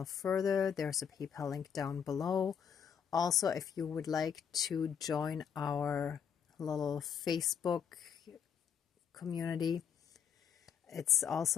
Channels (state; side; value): quieter; right; 7.7 dB